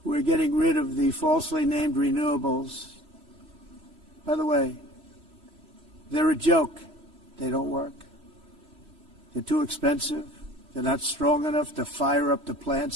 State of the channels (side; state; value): left; late; 3.1 ms